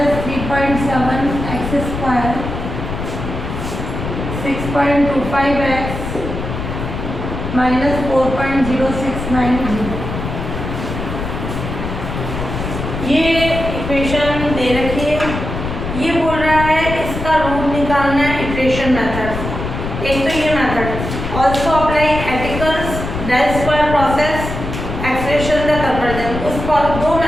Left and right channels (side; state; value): left; noise; rumble, 6 dB below the sound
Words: 3.7 x square 6.25 x minus 4.0690, ये इक्वेशन दे रखी है। ये बोल रहा है इसका रूट निकालना है इटरेशन मेथड। एक तो ये method also apply Aitken's del square process expression the convergence. उस दो